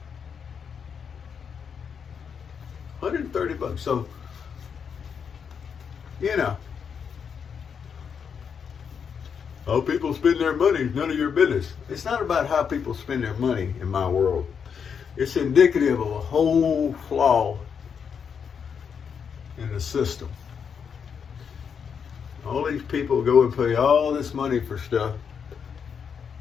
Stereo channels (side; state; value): right; quieter; 6.8 dB